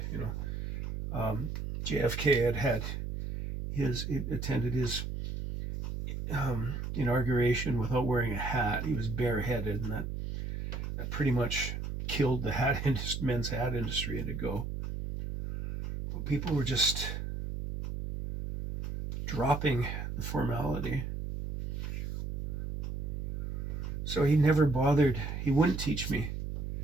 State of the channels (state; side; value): noise; right; hum, 4 dB below the sound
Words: JFK had attended his inauguration without wearing a hat. He was bareheaded, and that pretty much killed the men's hat industry to go. But people were just dropping the formality. So he never bothered. He wouldn't teach me